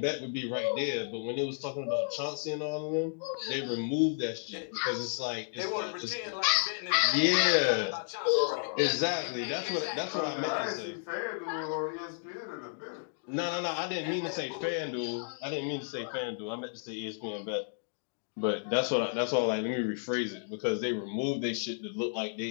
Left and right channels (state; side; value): silent; right; digital silence